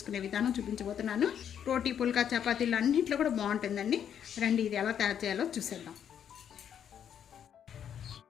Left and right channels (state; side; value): quieter; right; 8.9 dB